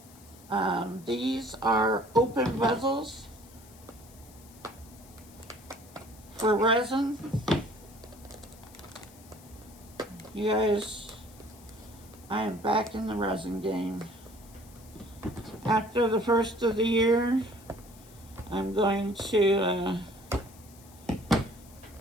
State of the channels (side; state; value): left; noise; hiss, 23 dB below the sound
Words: these are open bezels for resin. You guys, I am back in the resin game. After the first of the year, I'm going to